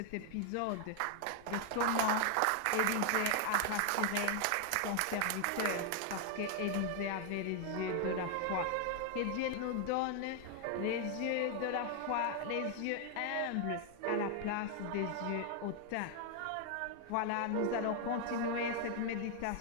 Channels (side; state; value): both; different; correlation 0.00